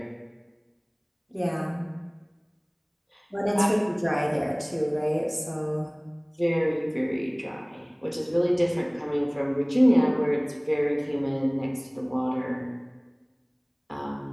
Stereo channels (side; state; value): both; identical; correlation 1.00